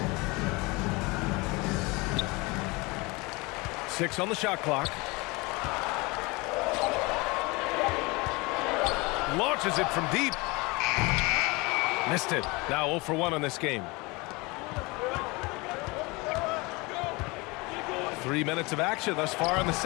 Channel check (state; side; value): quieter; right; 25.2 dB